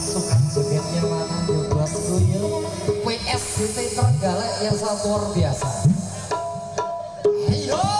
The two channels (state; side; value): identical; both; correlation 1.00